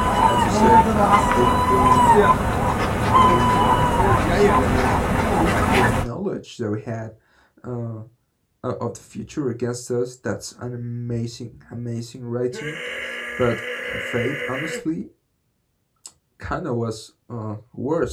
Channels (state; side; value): identical; both; correlation 1.00